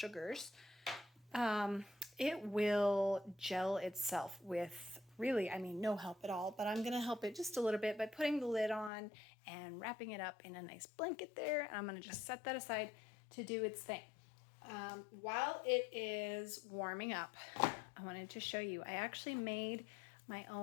it will gel itself with really, I mean, no help at all, but I'm going to help it just a little bit by putting the lid on and wrapping it up in a nice blanket there. And I'm going to just set that aside to do its thing. While it is warming up, I wanted to show you, I actually made my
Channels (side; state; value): right; drops out; at 8.9 s